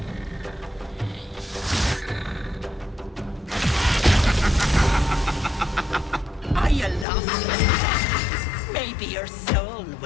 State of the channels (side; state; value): right; drops out; at 7.1 s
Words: Are you lost? Maybe your soul